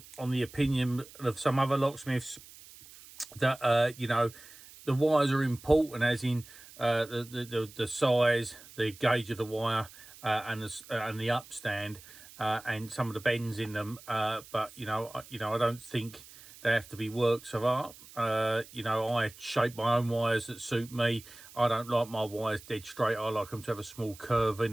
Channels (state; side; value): noise; right; hiss, 19 dB below the sound